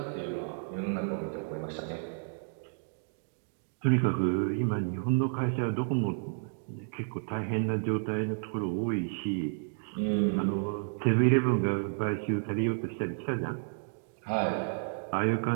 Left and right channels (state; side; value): silent; left; digital silence